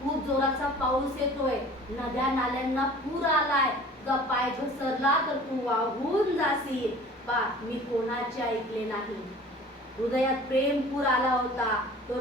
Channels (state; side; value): normal; both; correlation 0.45